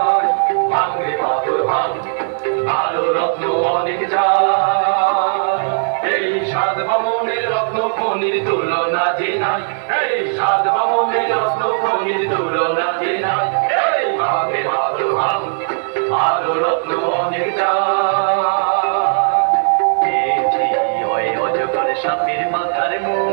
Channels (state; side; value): silent; left; digital silence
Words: ভাঙরে পাথর ভাঙ, ভালো রত্ন অনেক চাই। এই 7 বামনের রত্ন খনির তুলনা যে নাই। এই 7 বামনের রত্ন খনির তুলনা যে নাই। এই ভাঙরে পাথর ভাঙ, ভালো রত্ন অনেক চাই। অজগর সাপের মাথার